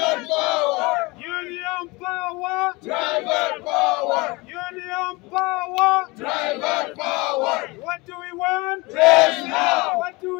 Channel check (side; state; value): right; quieter; 24.4 dB